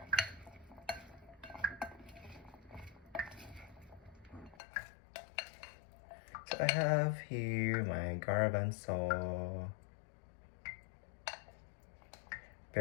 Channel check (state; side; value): drops out; right; at 4.5 s